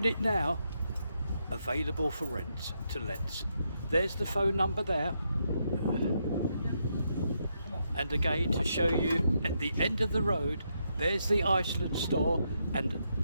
now available for rent to let. There's the phone number there. And again, to show you at the end of the road, there's the Iceland store. And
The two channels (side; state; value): both; inverted; correlation -0.80